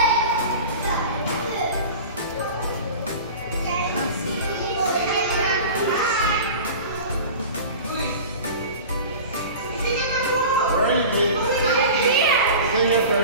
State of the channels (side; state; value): both; inverted; correlation -0.35